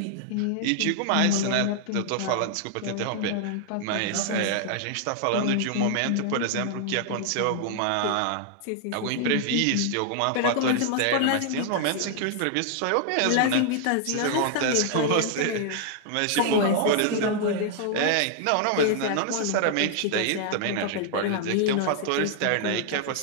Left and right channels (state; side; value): different; both; correlation 0.00